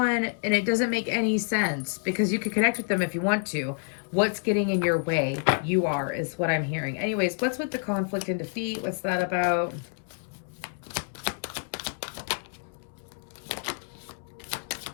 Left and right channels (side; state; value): right; silent; 59 dB below the other